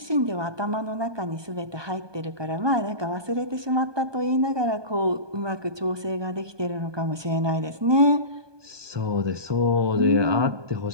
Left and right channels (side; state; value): left; late; 1.2 ms